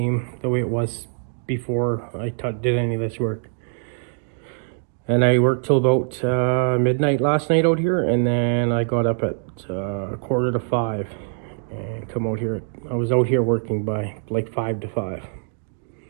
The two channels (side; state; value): left; silent; digital silence